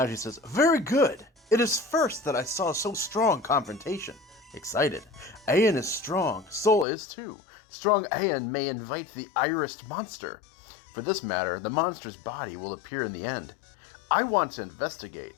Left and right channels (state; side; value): drops out; right; at 6.9 s